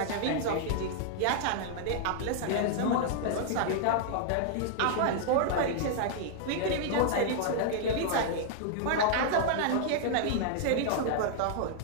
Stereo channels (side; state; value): both; different; correlation -0.01